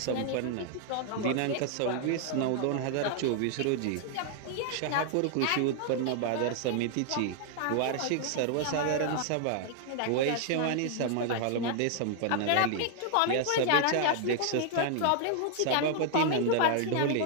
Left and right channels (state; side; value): different; both; correlation 0.00